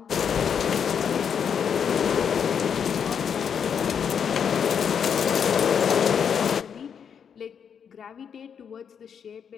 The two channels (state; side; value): quieter; right; 7.4 dB